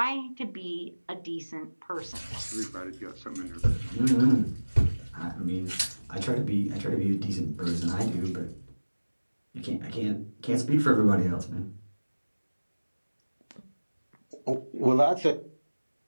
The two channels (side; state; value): both; inverted; correlation -1.00